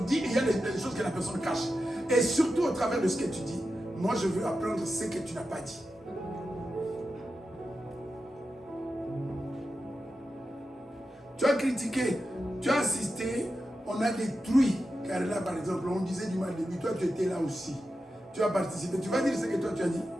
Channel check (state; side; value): normal; both; correlation 0.91